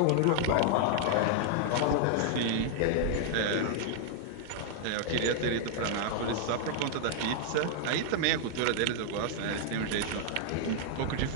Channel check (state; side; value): different; both; correlation 0.00